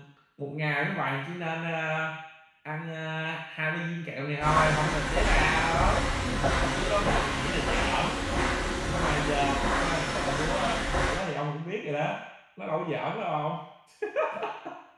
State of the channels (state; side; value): identical; both; correlation 1.00